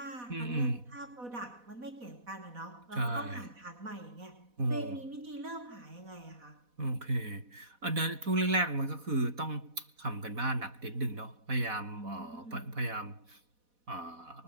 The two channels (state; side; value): late; left; 4.1 ms